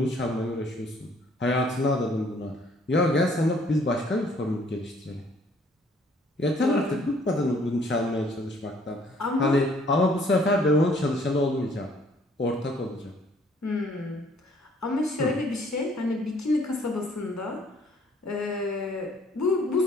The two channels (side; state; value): both; normal; correlation 0.61